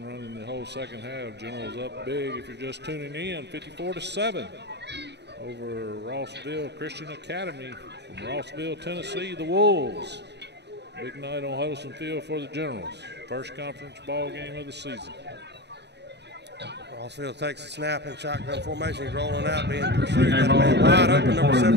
running the whole second half. Generals up big if you're just tuning in, 54 to 7 over Rossville Christian Academy from Rossville, Tennessee, the Wolves. Big night on Huddleston Field for the Generals. First conference ball game of the season. Rossville takes a snap in shotgun formation. He's rolling out, being pursued. Got a man wide open, number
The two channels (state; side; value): late; left; 0.50 ms